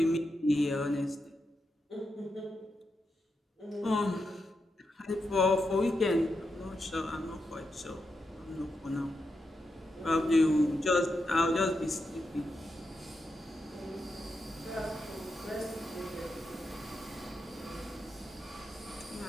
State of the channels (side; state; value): both; normal; correlation 0.86